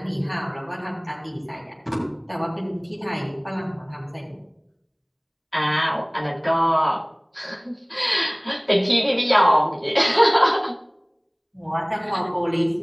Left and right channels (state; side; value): identical; both; correlation 1.00